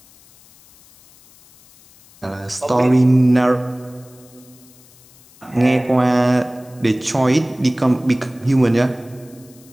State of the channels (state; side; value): noise; left; hiss, 27 dB below the sound